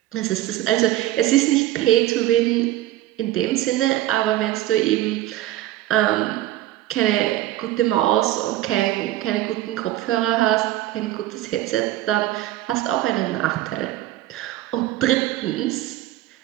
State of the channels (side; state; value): left; quieter; 14.8 dB